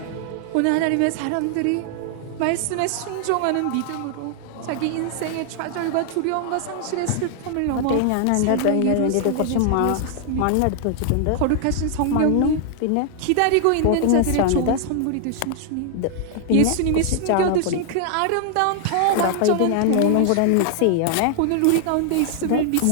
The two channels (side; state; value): both; different; correlation 0.00